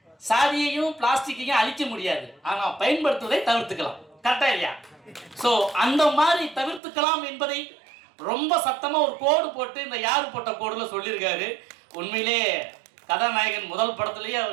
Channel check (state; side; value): drops out; left; at 6.8 s